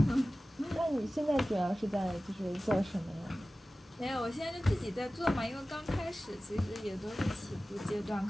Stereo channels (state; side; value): normal; both; correlation 0.96